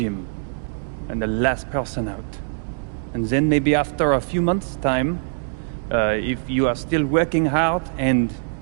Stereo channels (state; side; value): silent; left; digital silence